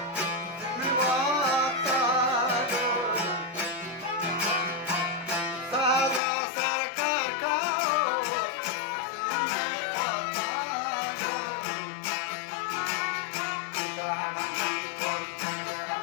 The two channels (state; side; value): drops out; right; at 6.2 s